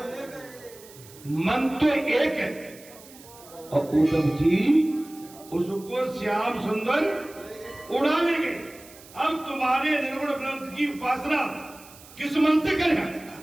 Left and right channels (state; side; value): noise; right; hiss, 21 dB below the sound